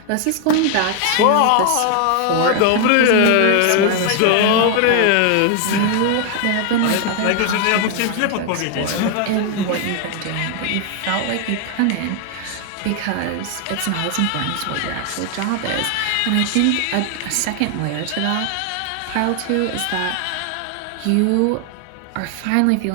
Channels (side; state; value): both; different; correlation 0.00